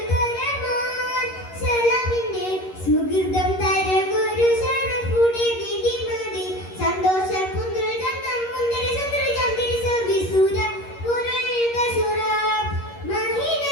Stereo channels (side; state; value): right; late; 11 ms